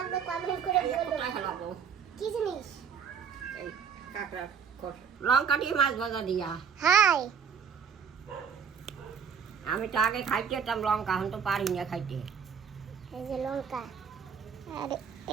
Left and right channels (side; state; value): left; quieter; 6.9 dB